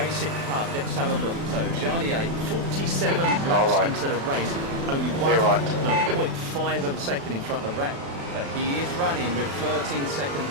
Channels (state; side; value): late; left; 36 ms